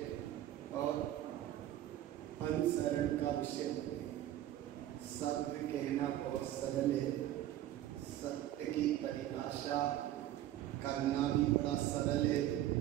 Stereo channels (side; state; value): left; quieter; 13.1 dB